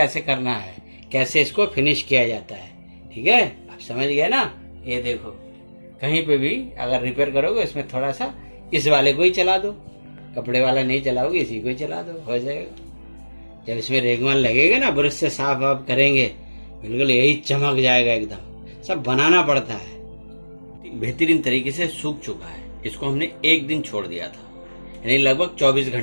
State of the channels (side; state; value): both; inverted; correlation -1.00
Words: करना है, कैसे इसको फिनिश किया जाता है। ठीक है, आप समझ गए ना। ये देखो, कहीं पे भी अगर रिपेयर करोगे इसमें थोड़ा सा इस वाले को ही चला दो, कपड़े वाला नहीं चलाओगे, इसी को ही चला दो, हो जाएगा। जब इसमें रेगमाल लगेगा ना, ब्रश से साफ आप करेंगे, बिल्कुल यही चमक जाएगा एकदम। सब बनाना पड़ता है। बेहतरीन तरीके से सूख चुका है। इसको हमने एक दिन छोड़ दिया था, यानी लगभग 24